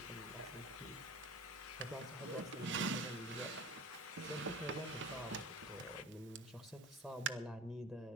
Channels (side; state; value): both; normal; correlation 0.38